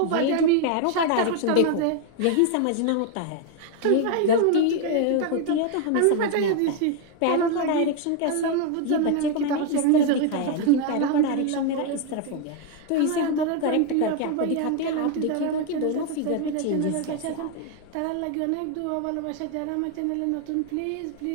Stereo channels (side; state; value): both; different; correlation 0.01